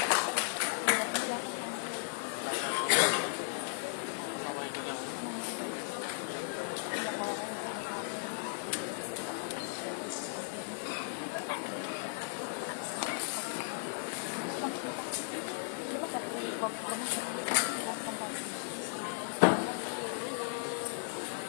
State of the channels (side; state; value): right; silent; digital silence